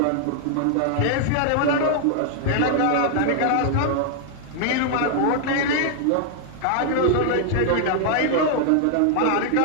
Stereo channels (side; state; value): both; different; correlation 0.00